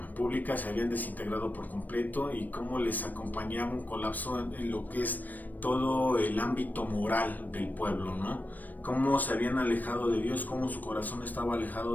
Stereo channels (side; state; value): right; late; 0.085 ms